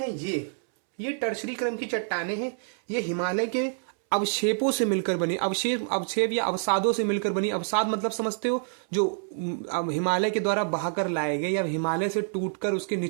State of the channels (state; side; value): silent; left; 60 dB below the other